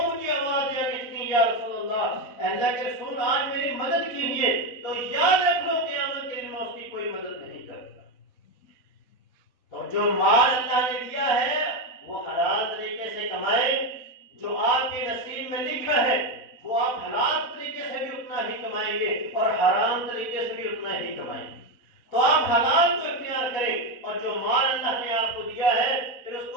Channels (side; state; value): right; late; 4.1 ms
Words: مجھے آواز دیا کہ یا رسول اللہ، اللہ کے رسول آج میری مدد کیجیے، تو یاد رکھ لو قیامت کے دن میں اس کی کوئی مدد نہیں کرتا۔ تو جو مال اللہ نے دیا ہے وہ حلال طریقے سے کمائیں، جو آپ کے نصیب میں لکھا ہے وہ آپ حلال طریقے سے بھی اتنا ہی کمائیں گے اور حرام طریقے سے بھی اتنا ہی کمائیں گے۔ تو آپ حلال کو اختیار کریں، اور جو مال اللہ نے آپ کو دیا ہے پھر اس